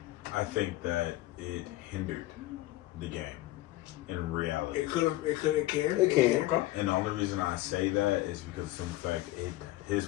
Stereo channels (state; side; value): quieter; right; 16.9 dB